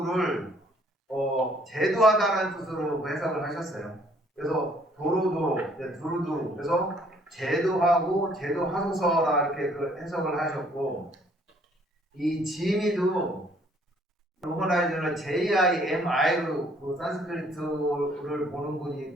제도하다라는 뜻으로 해석을 하셨어요. 그래서 도로도로, 두루두루. 그래서 제도하고 제도하소서라 이렇게 그 해석을 하셨고, 이 지미도 로머라이저는 JIMI로 그 산스크리트를 보는 분이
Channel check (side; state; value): both; normal; correlation 0.62